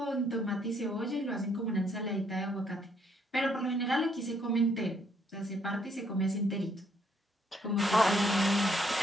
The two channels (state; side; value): normal; both; correlation 0.70